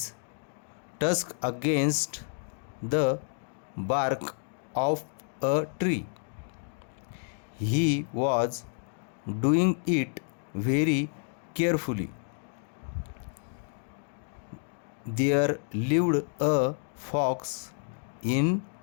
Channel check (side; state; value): right; silent; 58 dB below the other